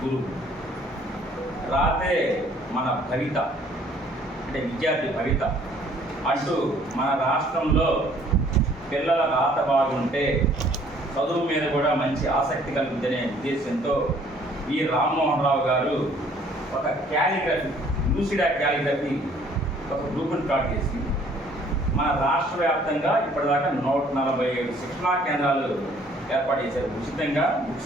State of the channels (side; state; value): both; normal; correlation 0.59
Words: గురువు. రాతే మన భవిత, అంటే విద్యార్థి భవిత అంటూ మన రాష్ట్రంలో పిల్లల రాత బాగుంటే చదువు మీద కూడా మంచి ఆసక్తి కలుగుతుందనే ఉద్దేశంతో ఈ రామ్మోహన్ రావు గారు ఒక క్యాలిగ్రఫీ, లూసిడా క్యాలిగ్రఫీ ఒక గ్రూపును స్టార్ట్ చేసి మన రాష్ట్ర వ్యాప్తంగా ఇప్పటిదాకా 147 శిక్షణా కేంద్రాలు ఏర్పాటు చేశారు. ఉచితంగా